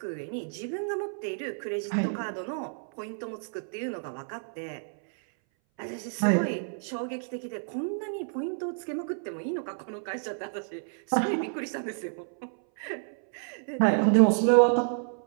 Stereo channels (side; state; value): left; silent; 58 dB below the other